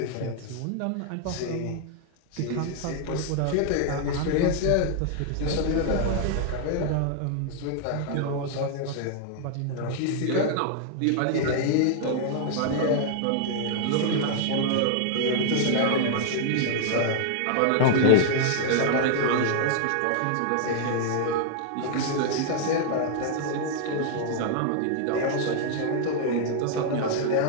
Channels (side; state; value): both; different; correlation -0.01